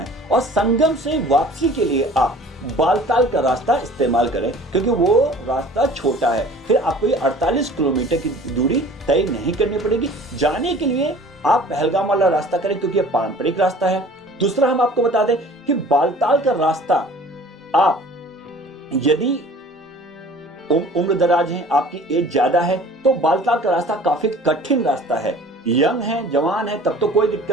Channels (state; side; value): normal; both; correlation 0.47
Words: और संगम से वापसी के लिए आप बालताल का रास्ता इस्तेमाल करें, क्योंकि वो रास्ता छोटा है। फिर आपको ये 48 किलोमीटर की दूरी तय नहीं करनी पड़ेगी। जाने के लिए आप पहलगाम वाला रास्ता करें, क्योंकि ये पारंपरिक रास्ता है। दूसरा हम आपको बता दें कि बालताल का रास्ता आप यदि उम्र दराज हैं, आपकी एज ज्यादा है, तो बालताल का रास्ता काफी कठिन रास्ता है। यंग है, जवान है, तब तो कोई